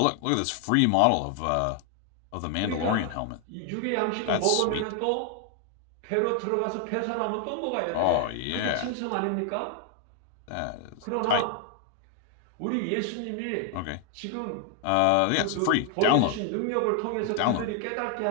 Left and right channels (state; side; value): different; both; correlation 0.00